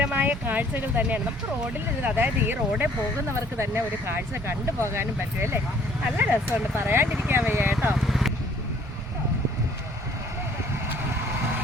കാഴ്ചകൾ തന്നെയാണ്. നമുക്ക് റോഡിൽ നിന്ന്, അതായത് ഈ റോഡിൽ പോകുന്നവർക്ക് തന്നെ ഒരു കാഴ്ച കണ്ടു പോകാനും പറ്റും അല്ലേ. നല്ല രസമുണ്ട്, പറയാണ്ടിരിക്കാൻ വയ്യ കേട്ടോ.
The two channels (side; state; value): both; normal; correlation 0.59